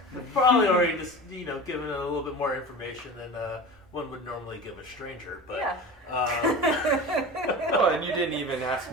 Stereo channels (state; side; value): normal; both; correlation 0.33